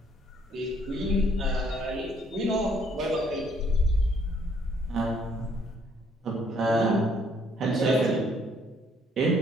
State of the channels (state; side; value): normal; both; correlation 0.66